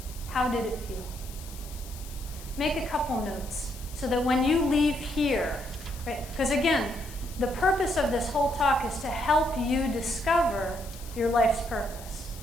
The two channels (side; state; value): left; noise; hiss, 17 dB below the sound